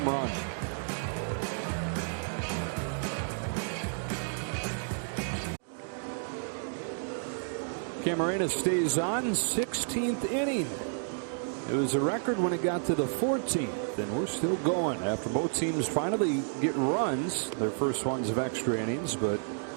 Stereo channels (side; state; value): left; silent; digital silence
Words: run. Camarena stays on, 16th inning. It was a record when it got to the 14th, and we're still going after both teams finally get runs, their first ones of extra innings, but